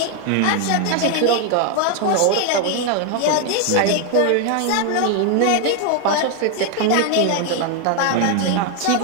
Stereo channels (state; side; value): different; both; correlation 0.01